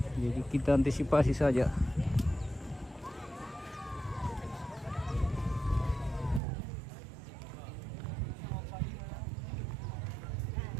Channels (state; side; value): drops out; left; at 6.4 s